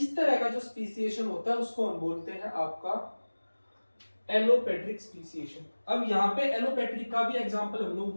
तरह का जो स्पीसीएशन होता है उसको हम बोलते हैं आपका एलोपेट्रिक स्पीसीएशन। अब यहाँ पे एलोपेट्रिक का भी एग्जांपल हम लोग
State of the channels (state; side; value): inverted; both; correlation -1.00